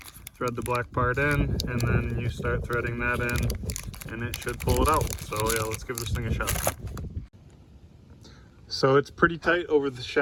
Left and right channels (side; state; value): both; identical; correlation 1.00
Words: thread the black part in, and then you start threading that in, and it should pull it out. So yeah, let's give this thing a shot. So it's pretty tight over the